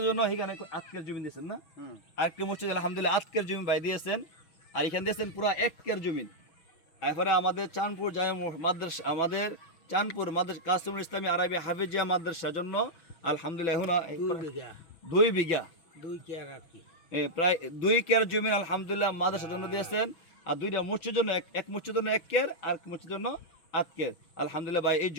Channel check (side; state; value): right; late; 5.9 ms